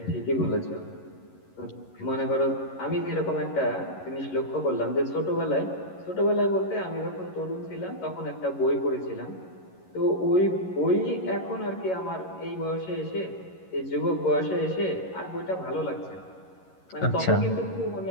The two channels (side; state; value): right; late; 11 ms